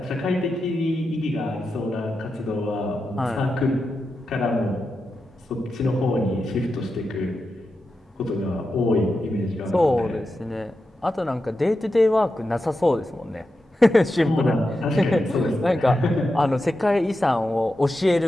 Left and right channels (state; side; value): normal; both; correlation 0.89